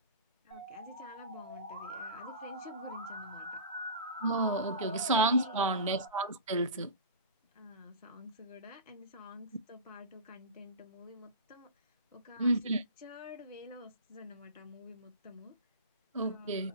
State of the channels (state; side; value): inverted; both; correlation -0.31